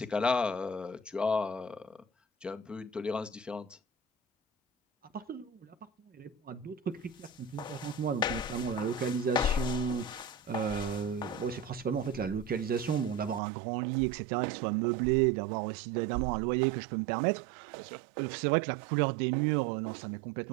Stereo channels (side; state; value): left; drops out; at 13.4 s